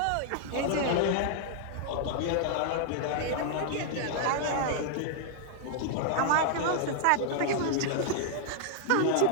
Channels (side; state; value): both; different; correlation -0.01